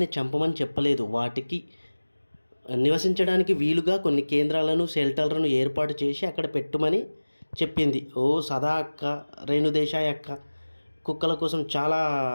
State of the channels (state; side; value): inverted; both; correlation -1.00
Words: చంపమని చెప్పలేదు. వాటికి నివసించడానికి వీలుగా కొన్ని కేంద్రాలను, షెల్టర్లను ఏర్పాటు చేసి అక్కడ పెట్టుమని చెప్పింది. ఓ సదా అక్క, రేణుదేశాయ్ అక్క కుక్కల కోసం చాలా